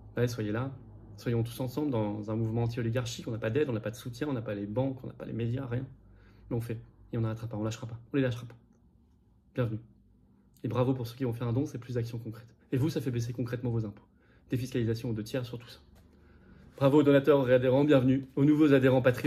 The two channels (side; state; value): both; identical; correlation 1.00